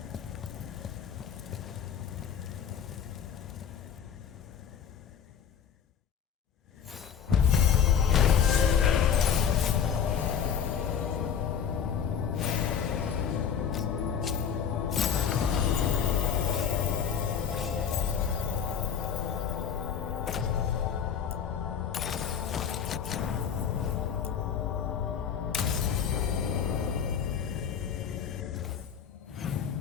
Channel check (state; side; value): quieter; right; 7.8 dB